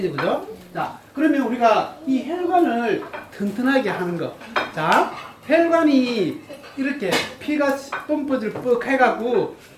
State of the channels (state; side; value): identical; both; correlation 1.00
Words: 그죠? 자, 그러면 우리가 이 혈관을 튼튼하게 하는 거. 자, 혈관이 이렇게 피가 펌프질 뻑 해갖고